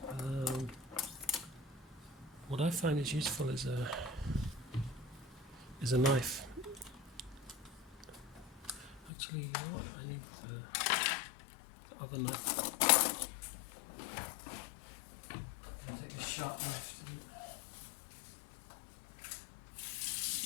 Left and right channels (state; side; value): drops out; right; at 9.1 s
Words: What I find is useful is a knife. Actually, you know what? I need the other knife. I'll take a sharp knife.